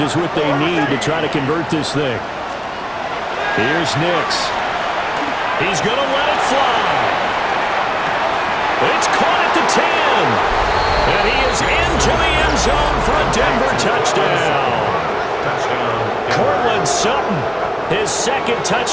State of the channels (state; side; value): identical; both; correlation 1.00